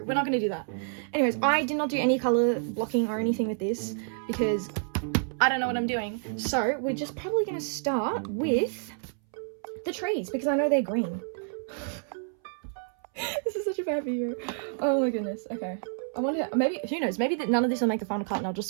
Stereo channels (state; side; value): silent; left; 59 dB below the other